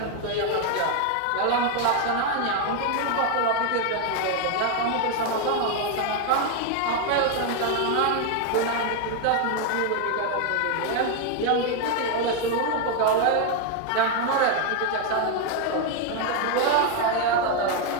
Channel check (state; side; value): different; both; correlation 0.01